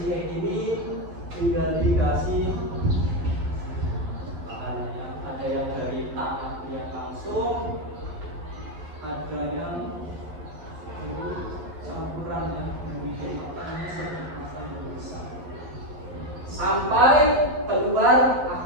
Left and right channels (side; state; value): left; late; 11 ms